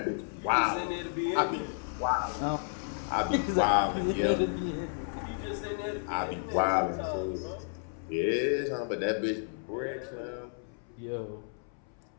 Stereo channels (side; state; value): right; silent; 56 dB below the other